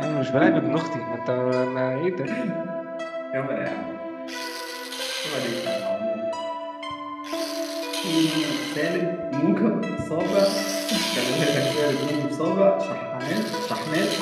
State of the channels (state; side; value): identical; both; correlation 1.00